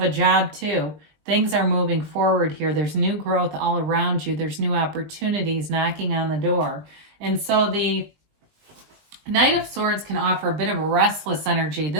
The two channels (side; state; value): left; late; 20 ms